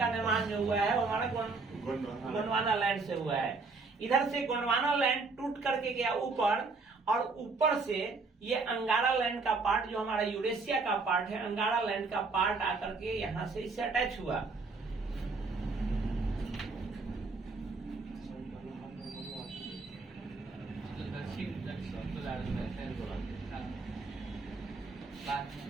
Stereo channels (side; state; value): left; quieter; 4.0 dB